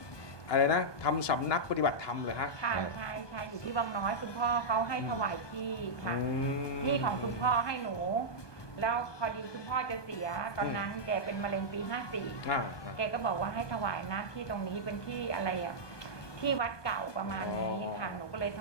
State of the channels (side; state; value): right; late; 1.2 ms